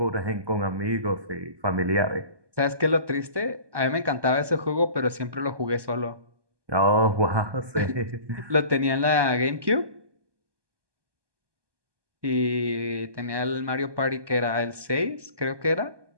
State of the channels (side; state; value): left; late; 1.2 ms